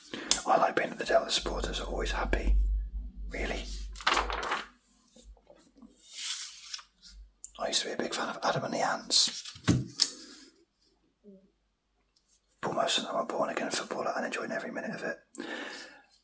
other supporters are always happy. Really. I used to be a big fan of Adam and the Ants. But most of them are born again footballer and enjoying every minute of it.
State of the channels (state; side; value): identical; both; correlation 1.00